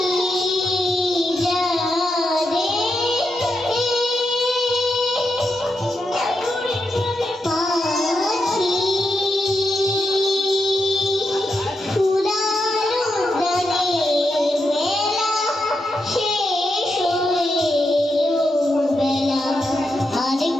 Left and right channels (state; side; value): normal; both; correlation 0.85